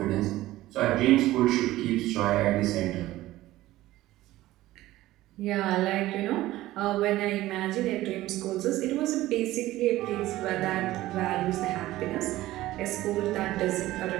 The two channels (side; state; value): left; quieter; 16.2 dB